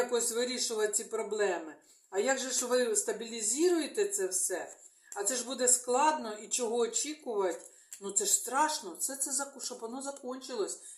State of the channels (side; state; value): both; identical; correlation 1.00